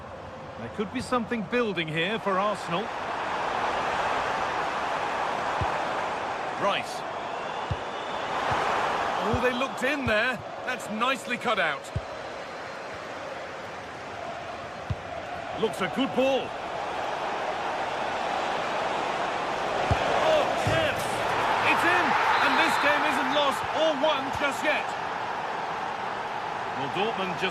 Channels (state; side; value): identical; both; correlation 1.00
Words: There could be something building here for Arsenal. Rice. Oh, they looked in there. That's nicely cut out. Looks a good ball. Oh, chance! It's in! And this game isn't lost or won just yet. Well, Dortmund